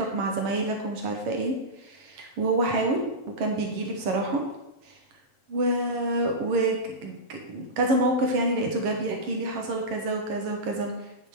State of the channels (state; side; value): late; left; 7.3 ms